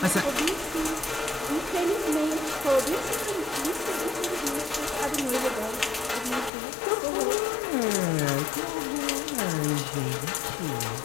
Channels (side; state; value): right; drops out; at 6.5 s